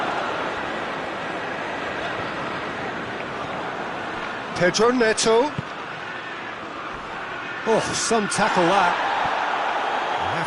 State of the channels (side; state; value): both; identical; correlation 1.00